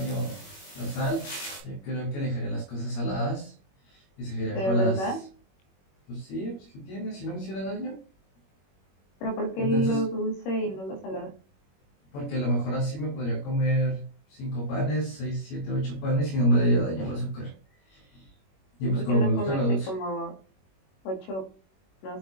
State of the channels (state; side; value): late; right; 21 ms